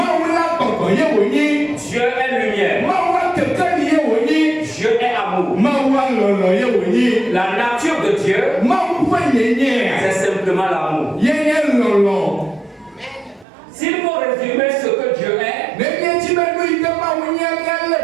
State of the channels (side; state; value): left; drops out; at 13.5 s